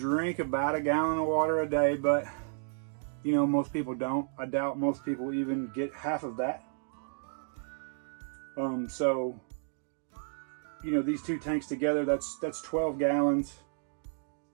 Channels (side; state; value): left; silent; digital silence